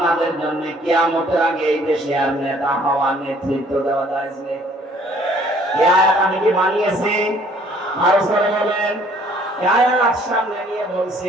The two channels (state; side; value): normal; both; correlation 0.59